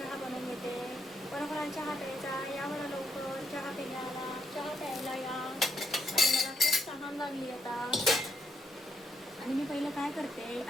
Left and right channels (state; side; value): normal; both; correlation 0.77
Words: बनवून घेते. कोणाकोणाला चहा प्यायचा या बरं लवकर. चहा प्यायला, चहा प्यायला या. आणि मला खूप तहान लागली आता. आणि मी पहिलं काय करते,